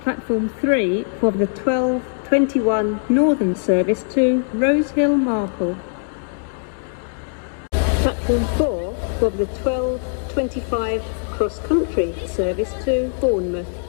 Platform 3 for the 12:21 Northern service to Rosehill Marple. Platform 4 for the 12:25 cross-country service to Bournemouth.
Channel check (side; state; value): right; silent; digital silence